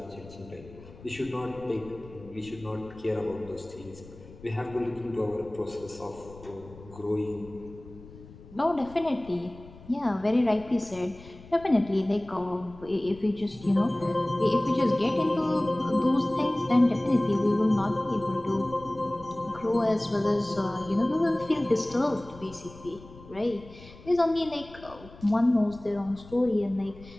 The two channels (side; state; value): left; noise; rumble, 19 dB below the sound